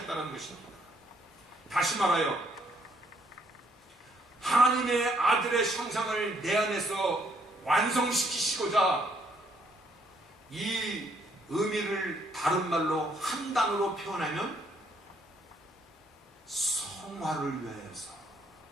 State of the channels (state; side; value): normal; both; correlation 0.69